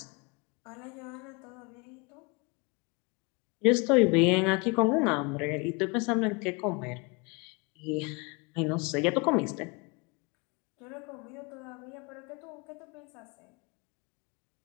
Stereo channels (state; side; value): quieter; right; 29.1 dB